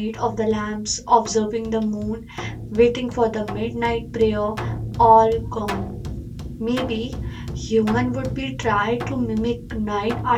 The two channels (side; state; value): both; identical; correlation 1.00